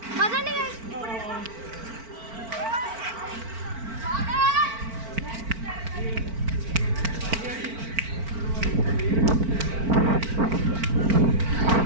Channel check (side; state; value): left; late; 4.4 ms